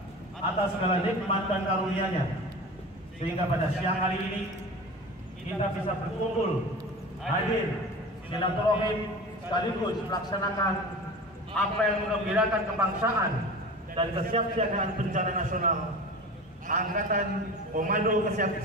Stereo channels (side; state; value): both; normal; correlation 0.33